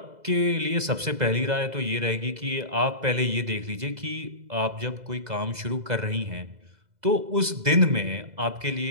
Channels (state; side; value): late; left; 2.0 ms